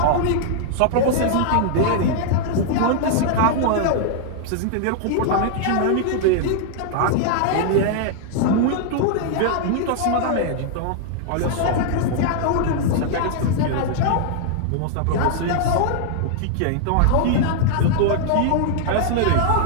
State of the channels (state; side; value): different; both; correlation -0.01